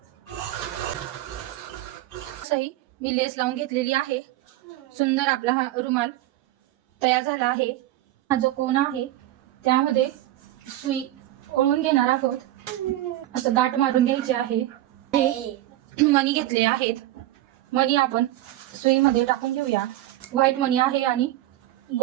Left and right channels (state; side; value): quieter; left; 15.0 dB